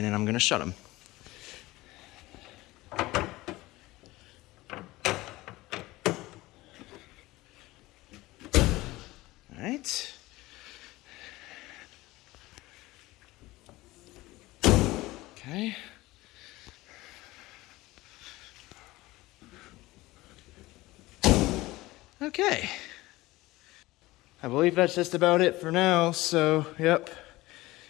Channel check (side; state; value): right; quieter; 19.2 dB